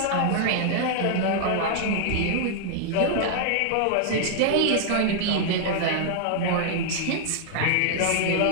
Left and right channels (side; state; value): both; different; correlation -0.01